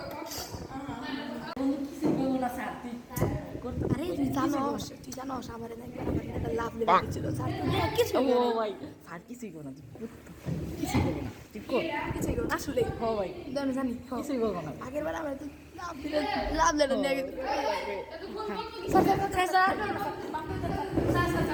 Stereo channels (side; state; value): both; identical; correlation 1.00